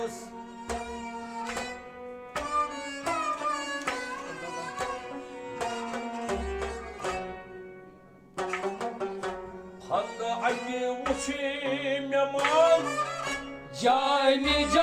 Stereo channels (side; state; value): both; identical; correlation 1.00